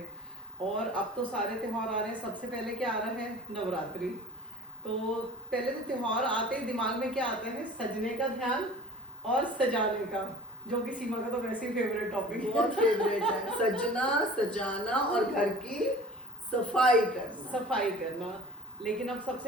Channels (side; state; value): both; normal; correlation 0.42